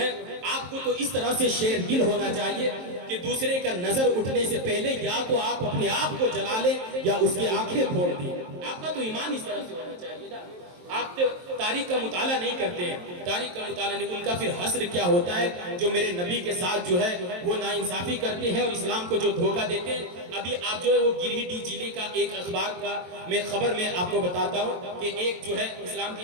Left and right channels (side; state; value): left; late; 23 ms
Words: آپ کو تو اس طرح سے شیر دل ہونا چاہیے کہ دوسرے کا نظر اٹھنے سے پہلے یا تو آپ اپنے آپ کو جلا لیں یا اس کی آنکھیں پھوڑ دیں۔ آپ کا تو ایمان اس طرح سے ہونا چاہیے نا۔ آپ تاریخ کا مطالعہ نہیں کرتے ہیں، تاریخ کا مطالعہ نہیں، ان کا پھر حسر کیا ہوتا ہے جو میرے نبی کے ساتھ جو ہے وہ ناانصافی کرتے ہیں اور اسلام کو جو دھوکہ دیتے ہیں۔ ابھی آپ جو ہے وہ گریڈی ضلع کا ایک اخبار کا میں خبر میں آپ کو بتاتا ہوں کہ ایک جو ہے اسلام کی